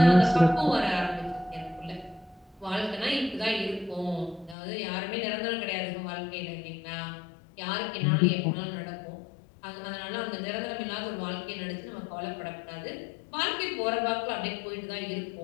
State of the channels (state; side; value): drops out; right; at 4.5 s